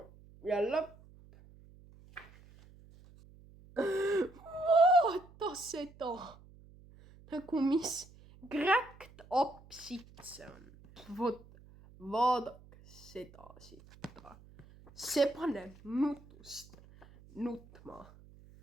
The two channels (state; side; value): noise; right; hum, 23 dB below the sound